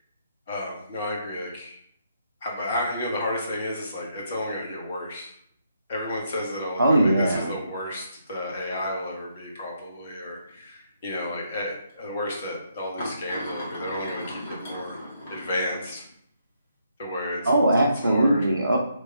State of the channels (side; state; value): both; inverted; correlation -0.76